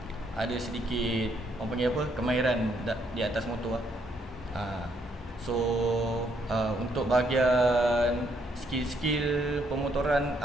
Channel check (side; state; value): both; normal; correlation 0.72